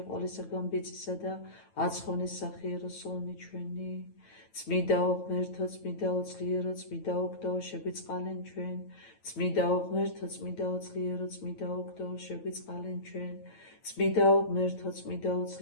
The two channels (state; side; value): late; right; 9.1 ms